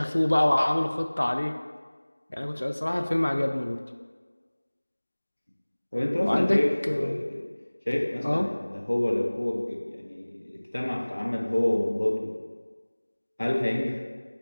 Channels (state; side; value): inverted; both; correlation -1.00